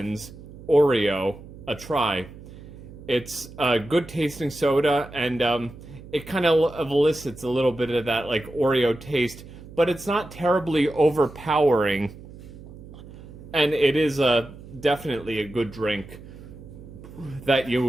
Oreo a try. It's a good tasting soda, and it kind of elicits a little bit of that like Oreo taste, but it's not terribly overpowering. And it is definitely a good drink that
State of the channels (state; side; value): noise; right; hum, 17 dB below the sound